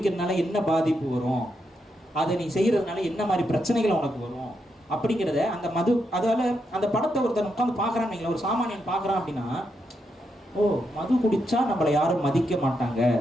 என்ன பாதிப்பு வரும், அதை நீ செய்யறதுனால என்ன மாதிரி பிரச்சனைகள் உனக்கு வரும் அப்படிங்கிறத அந்த மது, அதால அந்த படத்தை ஒருத்தர் உட்காந்து பார்க்கறான்னு, ஒரு சாமானியன் பார்க்கறான் அப்படின்னா, ஓ மது குடிச்சா நம்மளை யாரும் மதிக்க மாட்டாங்க,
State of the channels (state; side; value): normal; both; correlation 0.82